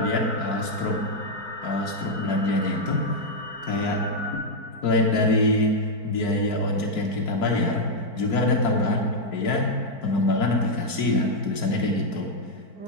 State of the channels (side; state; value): right; late; 4.5 ms